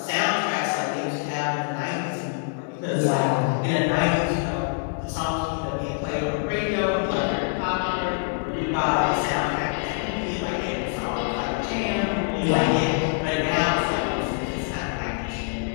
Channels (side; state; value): right; silent; 60 dB below the other